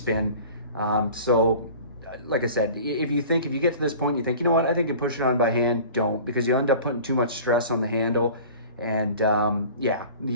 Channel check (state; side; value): inverted; both; correlation -0.42